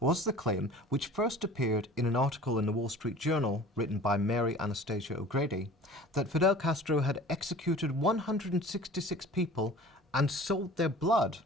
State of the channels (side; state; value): both; normal; correlation 0.44